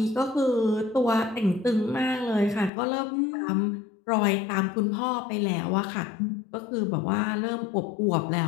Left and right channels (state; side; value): drops out; right; at 2.7 s